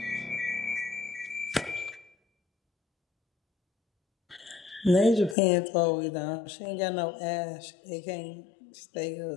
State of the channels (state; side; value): drops out; right; at 5.4 s